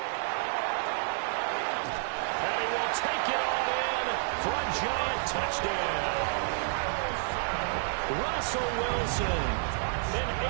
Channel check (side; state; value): left; silent; 58 dB below the other